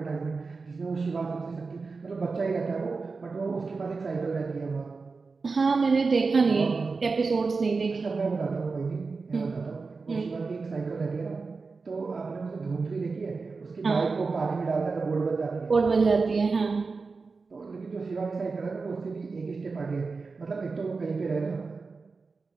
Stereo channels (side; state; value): left; quieter; 4.4 dB